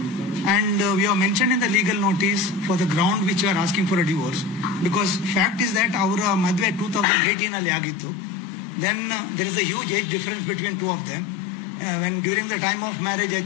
and we have mentioned in the legal notice for the ground which you are asking for a divorce, because fact is that ಅವರ ಮದುವೆ 2018 ಅಲ್ಲಿ ಆಗಿತ್ತು. Then there is a huge age difference between two of them. When during the time of marriage I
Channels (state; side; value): drops out; right; at 7.1 s